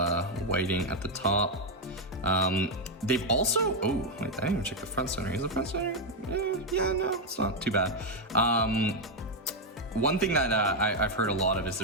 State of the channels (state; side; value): normal; both; correlation 0.02